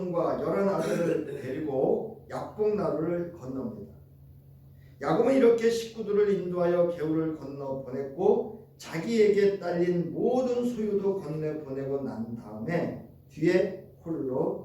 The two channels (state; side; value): identical; both; correlation 1.00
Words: 11아들을 데리고 약복나루를 건넙니다. 야곱은 이렇게 식구들을 인도하여 개울을 건너 보냈고 자기에게 딸린 모든 소유도 건네 보내고 난 다음에 뒤에